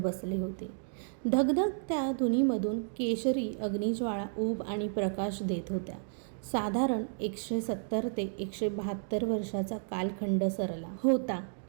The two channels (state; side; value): silent; left; digital silence